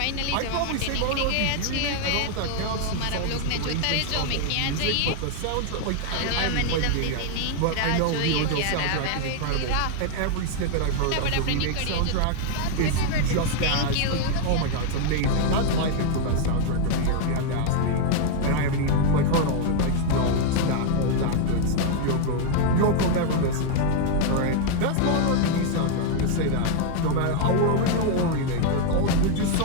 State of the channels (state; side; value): different; both; correlation 0.00